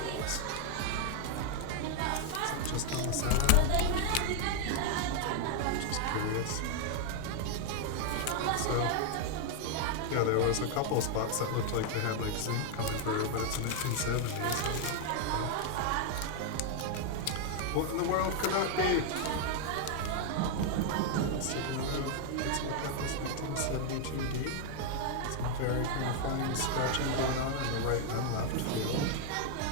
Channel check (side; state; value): both; different; correlation 0.00